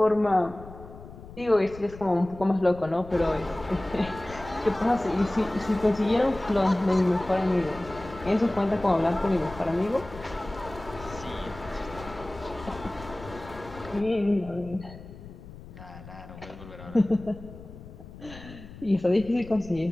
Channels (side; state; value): left; noise; rumble, 16 dB below the sound